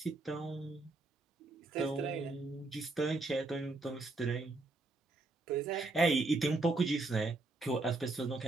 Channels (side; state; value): left; quieter; 3.1 dB